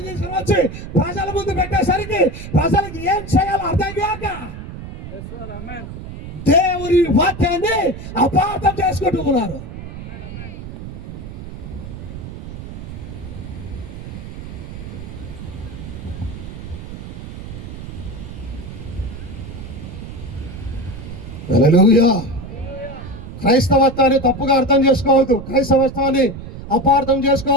తీసుకుని వచ్చి ప్రజల ముందు పెట్టేసరికి ప్రజలకు ఏం చేయాలో అర్థం కాక దేవుని వాక్యాన్ని అపార్థం చేసుకుంటూ ఉన్నారు. హల్లెలూయా. క్రైస్తవత్వాన్ని తప్పుగా అర్థం చేసుకోవద్దు, క్రైస్తవత్వాన్ని అపార్థం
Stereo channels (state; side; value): noise; right; rumble, 11 dB below the sound